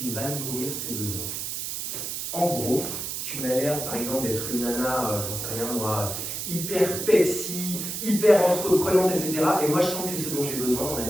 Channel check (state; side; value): noise; right; hiss, 4 dB below the sound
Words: il va nourrir ses besoins. En gros, tu m'as l'air, par exemple, d'être une nana, j'en sais rien moi, hyper Pepsi, hyper entreprenante, etc. Et moi, je sens que c'est ce dont j'ai besoin dans ma